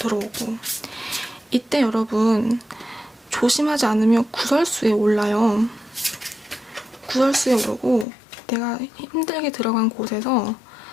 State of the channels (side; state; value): right; drops out; at 8.1 s